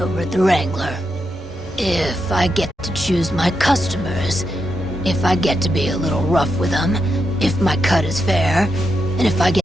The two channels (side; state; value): both; normal; correlation 0.83